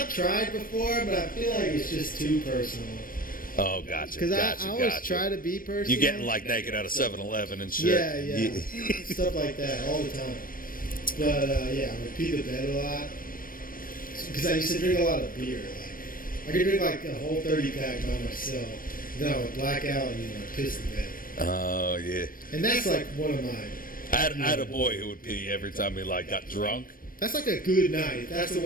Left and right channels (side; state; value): right; late; 0.41 ms